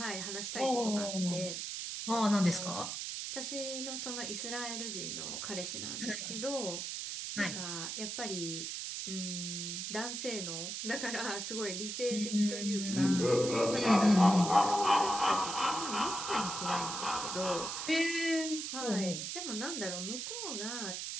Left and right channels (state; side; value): noise; right; hiss, 4 dB below the sound